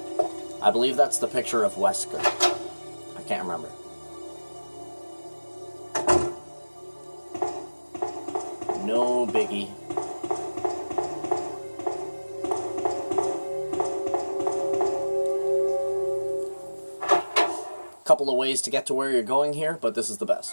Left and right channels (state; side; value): inverted; both; correlation -1.00